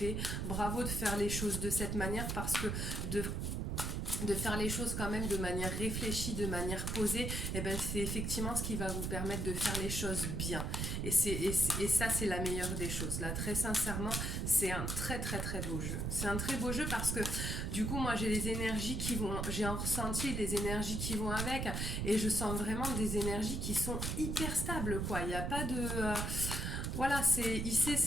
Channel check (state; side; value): noise; right; rumble, 1 dB below the sound